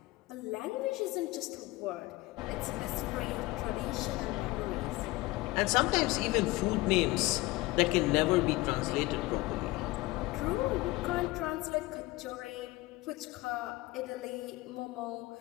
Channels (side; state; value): right; quieter; 20.3 dB